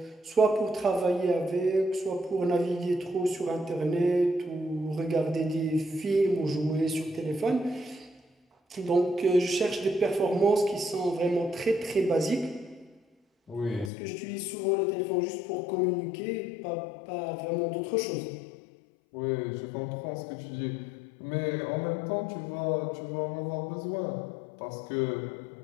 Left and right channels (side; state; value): right; drops out; at 13.9 s